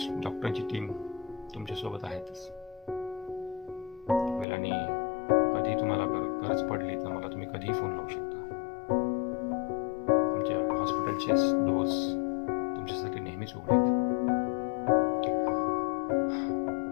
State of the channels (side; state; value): right; drops out; at 4.5 s